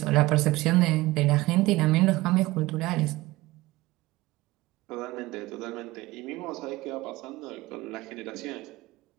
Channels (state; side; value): quieter; left; 19.5 dB